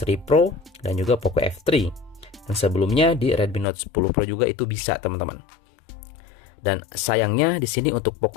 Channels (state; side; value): drops out; right; at 3.7 s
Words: Pro, dan juga Poco F3. Dan sebelumnya di Redmi Note 10 Pro juga itu bisa, teman-teman. Dan sayangnya di sini untuk